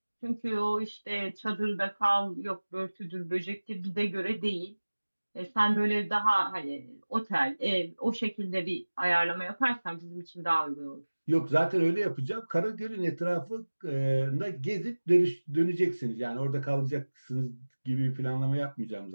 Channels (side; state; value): both; inverted; correlation -1.00